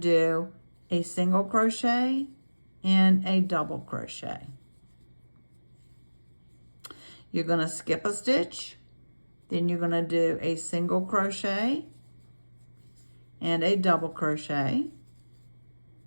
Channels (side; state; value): both; inverted; correlation -1.00